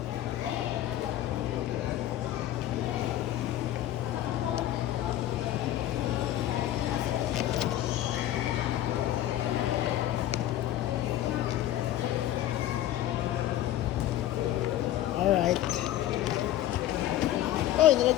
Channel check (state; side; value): quieter; right; 13.2 dB